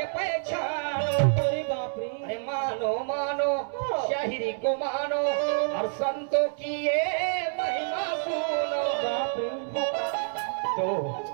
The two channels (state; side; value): silent; left; 59 dB below the other